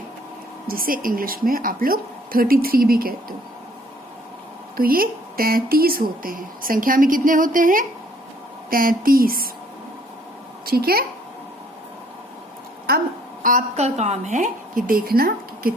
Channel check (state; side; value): normal; both; correlation 0.61